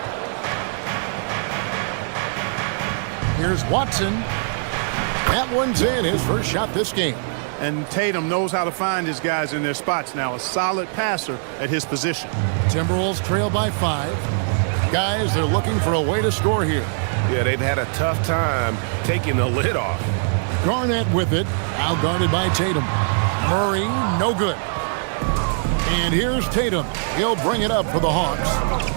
Here's Watson. That one's in, his first shot this game. And Tatum knows how to find his guys in their spots now. A solid passer at his position. Timberwolves trail by 5. Guys, they're looking for a way to score here. Yeah, they've had a tough time taking the lid off. Garnett with it, out-guarded by Tatum. Murray, no good. And here's Tatum. He'll bring it up for the Hawks.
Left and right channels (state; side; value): silent; left; digital silence